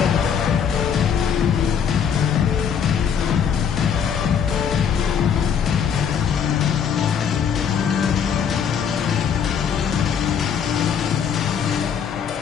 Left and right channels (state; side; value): quieter; right; 7.5 dB